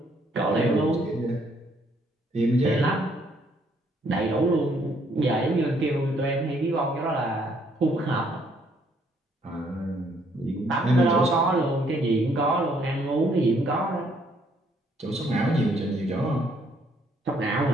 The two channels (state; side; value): normal; both; correlation 0.68